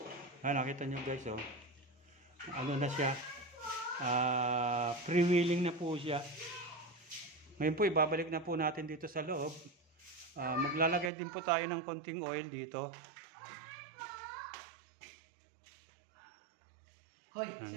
Nakita nyo guys, ano na siya, freewheeling na po siya. Ngayon po, ibabalik na po natin dito sa loob. Maglalagay din po tayo ng konting oil dito. Hoy,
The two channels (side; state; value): left; drops out; at 11.1 s